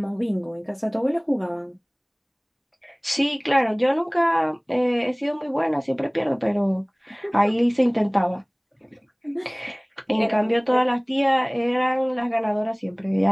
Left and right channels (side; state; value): both; identical; correlation 1.00